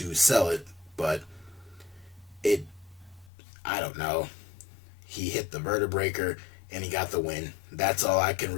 sell it. But I don't know. He hit the vertebraker and he got the win. That's all I can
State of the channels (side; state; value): right; drops out; at 3.3 s